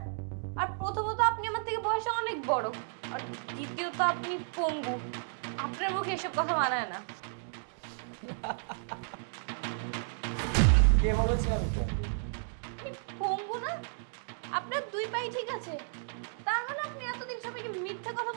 আর প্রথমত আপনি আমার থেকে বয়সে অনেক বড়, আর দ্বিতীয়ত আপনি পঙ্গু। আপনার মুখে এসব কথা মানায় না। কে বলেছে আমি পঙ্গু? আপনি পঙ্গু না? আপনার দুই পাই ঠিক আছে, তার মানে আপনি এতদিন সবাইকে মিথ্যা কথা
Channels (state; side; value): silent; left; digital silence